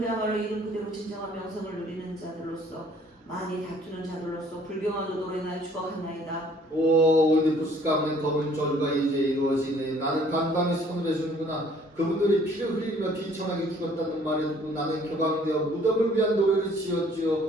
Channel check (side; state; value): both; normal; correlation 0.58